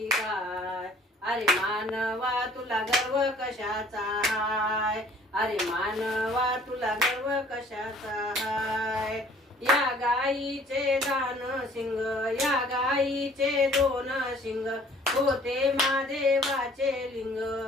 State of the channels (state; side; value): normal; both; correlation 0.55